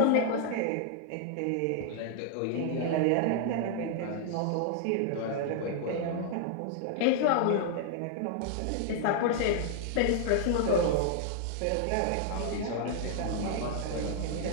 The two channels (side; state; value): both; different; correlation 0.00